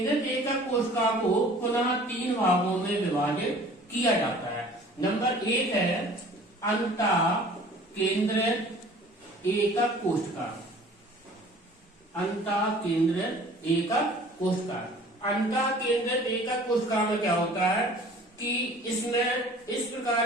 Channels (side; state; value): both; normal; correlation 0.48